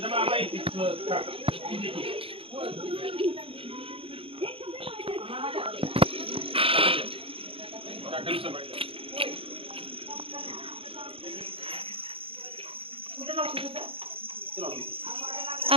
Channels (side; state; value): left; late; 0.27 ms